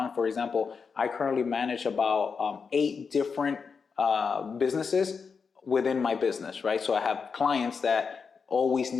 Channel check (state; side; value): quieter; right; 5.5 dB